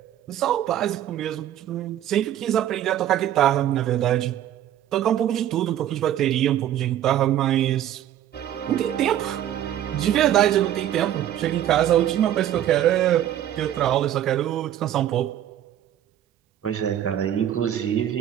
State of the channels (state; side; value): quieter; left; 11.5 dB